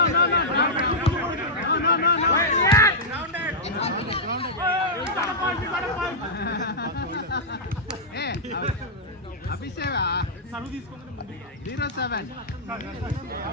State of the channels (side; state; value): both; normal; correlation -0.09